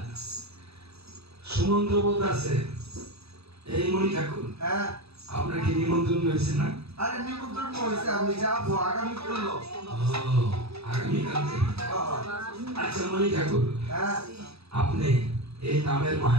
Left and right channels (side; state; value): left; late; 0.78 ms